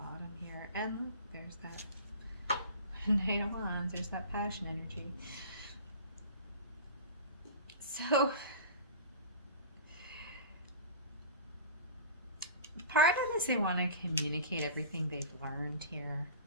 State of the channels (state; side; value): inverted; both; correlation -0.38